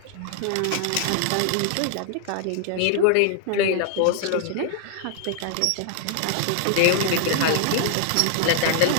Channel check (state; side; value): different; both; correlation 0.00